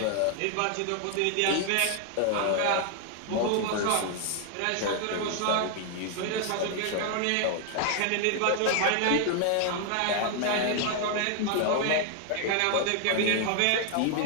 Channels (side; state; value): both; different; correlation 0.00